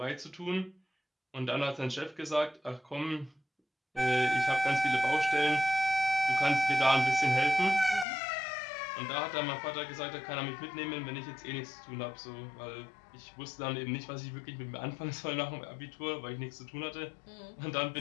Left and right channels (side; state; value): right; drops out; at 8.1 s